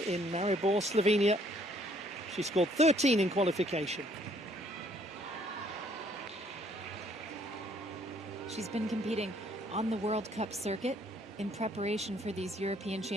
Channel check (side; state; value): both; normal; correlation 0.64